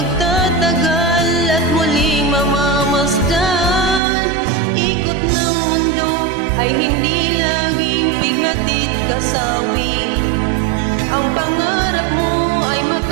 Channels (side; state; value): left; drops out; at 4.0 s